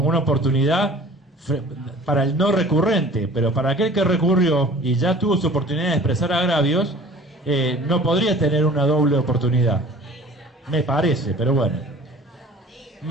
una oportunidad para el no recurrente, pero para aquel que recurrió y ya tuvo su oportunidad de expresar agravios, no podría tener una doble oportunidad. Me parece, pero bueno.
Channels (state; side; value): normal; both; correlation 0.46